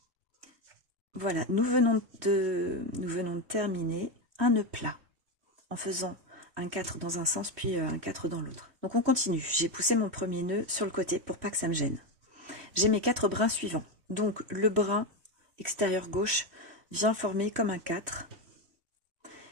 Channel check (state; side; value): late; left; 3.1 ms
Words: Voilà, nous venons de terminer un nœud plat en faisant un 4 dans un sens puis un 4 dans l'autre. Donc on continue, j'ai poussé mon premier nœud sur le côté pour pas que ça me gêne. J'ai mes 4 brins suivants, donc le brin extérieur gauche vient former comme un 4